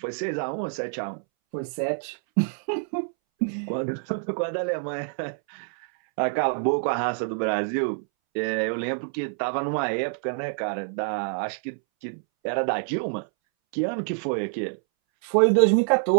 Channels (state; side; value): silent; left; 61 dB below the other